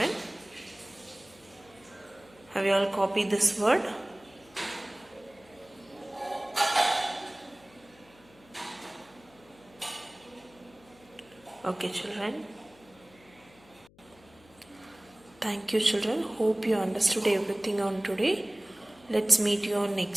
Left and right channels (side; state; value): left; noise; hum, 27 dB below the sound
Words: Have you all copied this word? Okay, children. Thank you, children. Hope you understood everything on today. Let's meet you on